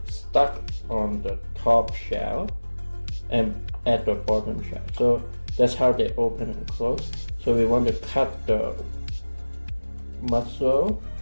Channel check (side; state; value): both; inverted; correlation -1.00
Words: stuck on the top shell and at the bottom shell. So that's how they open and close. So we want to cut the mussel